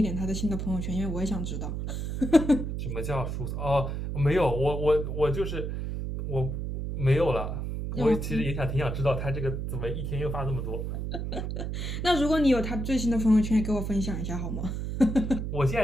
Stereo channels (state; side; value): noise; right; hum, 3 dB below the sound